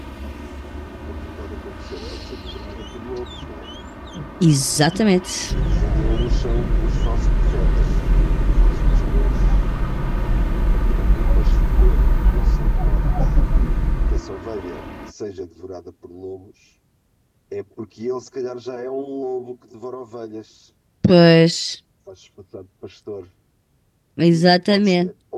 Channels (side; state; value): both; identical; correlation 1.00